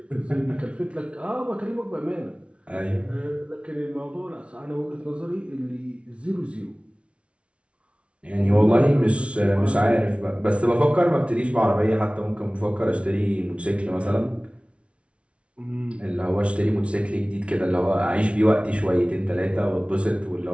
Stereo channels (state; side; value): late; left; 0.061 ms